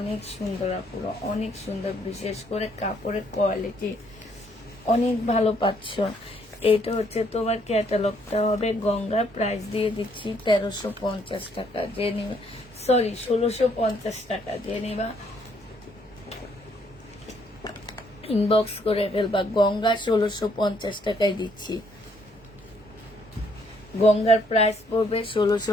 সুন্দর আপুরা, অনেক সুন্দর। বিশেষ করে কাপড়ের কোয়ালিটি অনেক ভালো পাচ্ছ। এটা হচ্ছে তোমার ক্যাটালগটা হবে। গঙ্গা প্রাইস দিয়ে দিচ্ছি 1350 টাকা। যে নিবা, সরি 1650 টাকা। যে নিবা ইনবক্স করে ফেলবা। গঙ্গা 1650 টাকায় দিচ্ছি। গঙ্গার প্রাইস পড়বে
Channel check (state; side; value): normal; both; correlation 0.68